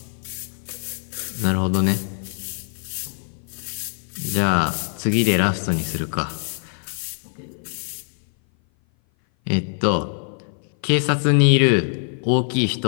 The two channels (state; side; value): silent; right; 57 dB below the other